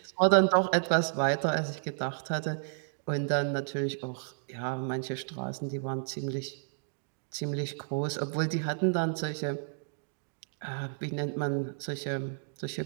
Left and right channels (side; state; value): left; silent; digital silence